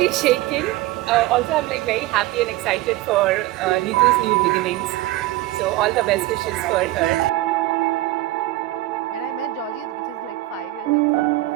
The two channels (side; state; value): left; quieter; 17.3 dB